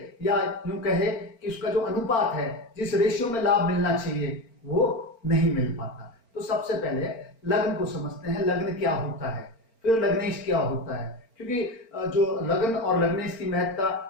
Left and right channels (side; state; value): right; late; 4.4 ms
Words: या यूं कहे कि उसका जो अनुपात है, जिस रेशियो में लाभ मिलना चाहिए वो नहीं मिल पाता। तो सबसे पहले लग्न को समझते हैं, लग्न क्या होता है, फिर लग्नेश क्या होता है। क्योंकि जो लग्न और लग्नेश की